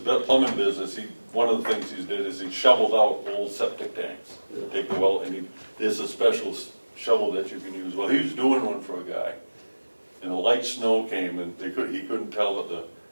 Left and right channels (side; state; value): both; inverted; correlation -1.00